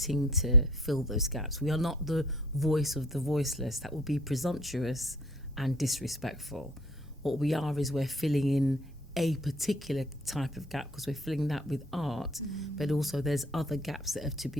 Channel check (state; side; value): normal; both; correlation 0.51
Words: to fill those gaps. We are not the voice of the voiceless. That would be presumptuous and disrespectful. What we are is we're filling in a particular type of gap, because we're filling that with art, but also there's other gaps that have to